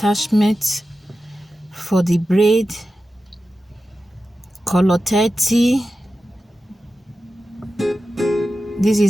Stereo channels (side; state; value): both; normal; correlation 0.93